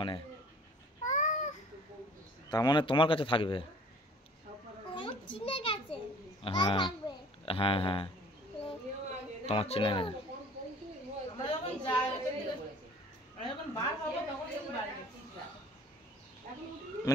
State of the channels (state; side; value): normal; both; correlation 0.50